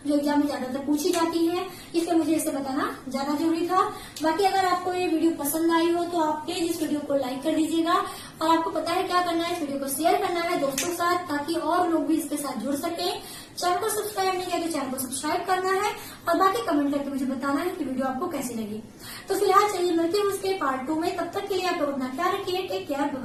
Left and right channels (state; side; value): identical; both; correlation 1.00